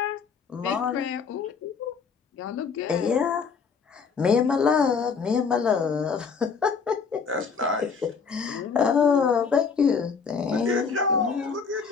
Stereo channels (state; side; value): quieter; right; 5.6 dB